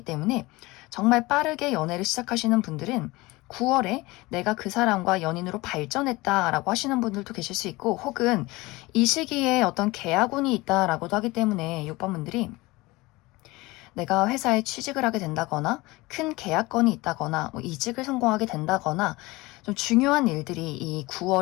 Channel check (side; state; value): right; quieter; 21.5 dB